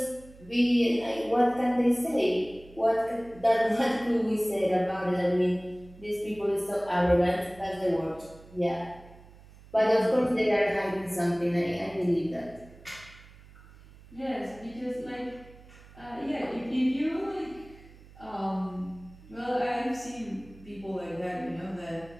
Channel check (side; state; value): right; noise; hum, 22 dB below the sound